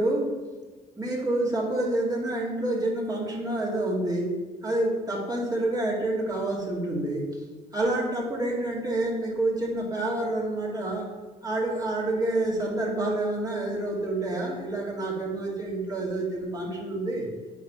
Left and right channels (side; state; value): both; normal; correlation 0.66